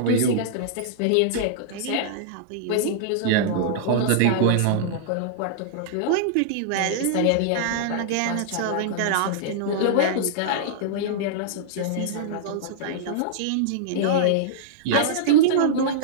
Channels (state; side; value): different; both; correlation -0.02